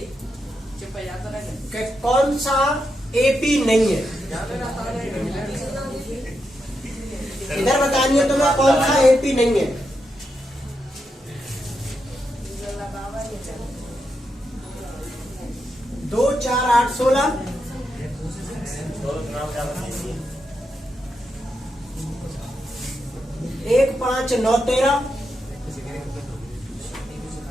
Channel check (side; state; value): both; normal; correlation 0.84